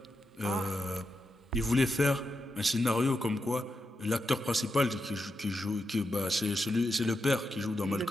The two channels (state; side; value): normal; both; correlation 0.86